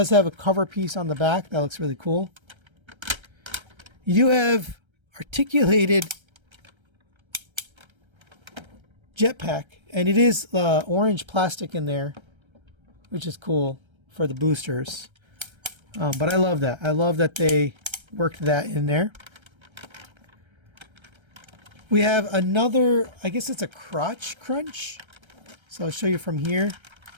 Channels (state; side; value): late; left; 1.3 ms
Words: have a cover piece on the back. That looks really cool. You do have articulated jetpack, and it is orange plastic in there, which is cool for the boosters. But I love that. I love that they worked that in there. We have another, I guess it's a crotch crunch. So I'll show you from here.